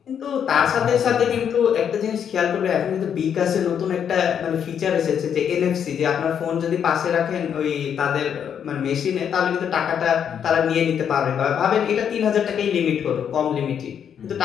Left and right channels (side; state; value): right; quieter; 8.3 dB